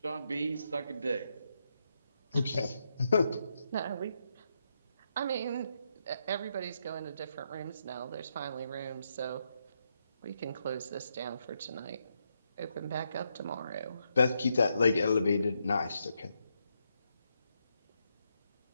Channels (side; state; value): both; inverted; correlation -0.81